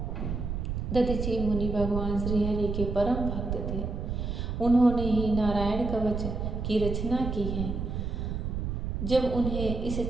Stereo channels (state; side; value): noise; right; rumble, 3 dB below the sound